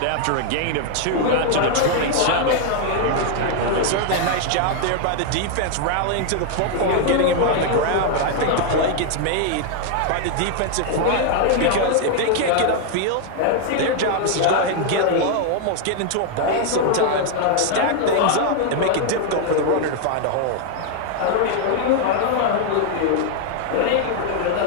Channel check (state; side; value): different; both; correlation 0.00